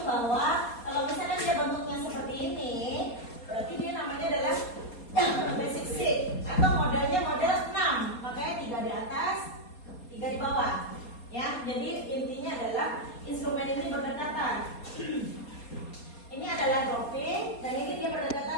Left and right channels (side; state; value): right; late; 4.2 ms